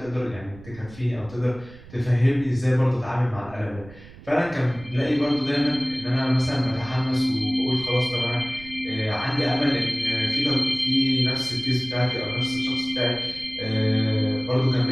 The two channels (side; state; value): right; noise; rumble, 19 dB below the sound